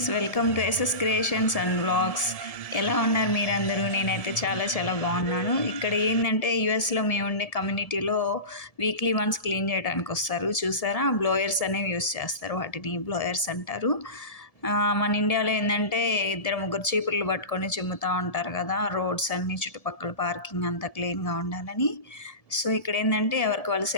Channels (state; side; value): late; right; 1.7 ms